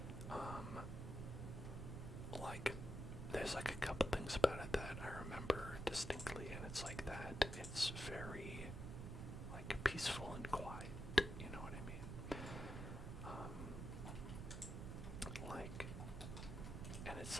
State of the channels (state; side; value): noise; right; rumble, 5 dB below the sound